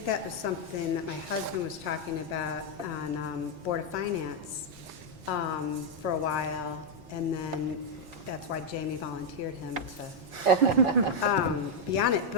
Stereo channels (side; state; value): left; late; 5.5 ms